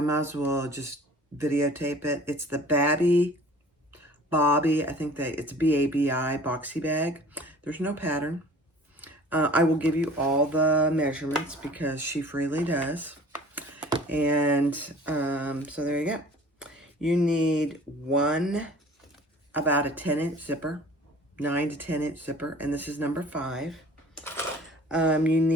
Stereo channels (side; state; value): both; normal; correlation 0.47